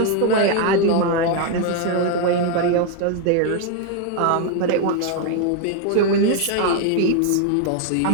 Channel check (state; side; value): different; both; correlation 0.00